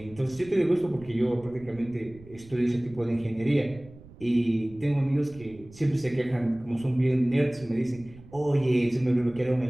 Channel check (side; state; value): right; noise; rumble, 21 dB below the sound